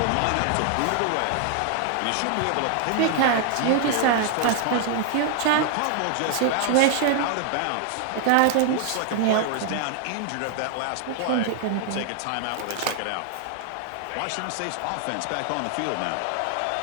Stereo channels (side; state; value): both; different; correlation 0.00